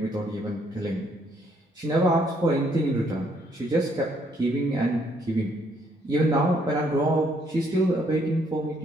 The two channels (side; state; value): both; normal; correlation 0.69